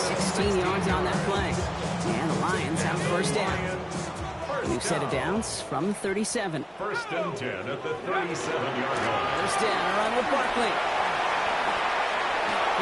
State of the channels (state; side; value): identical; both; correlation 1.00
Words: 16 yards on that play. And the Lions have first down. New set of downs from the 37. First and 10 at the 37-yard line. First down, a run with Barkley.